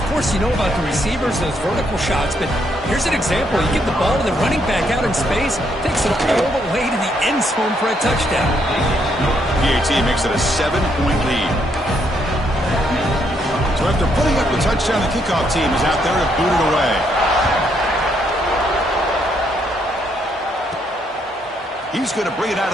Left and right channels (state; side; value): normal; both; correlation 0.74